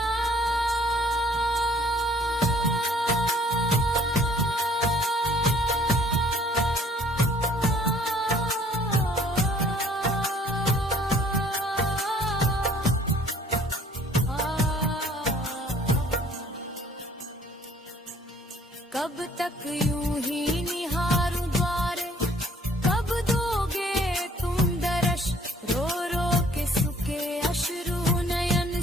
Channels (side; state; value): both; normal; correlation 0.58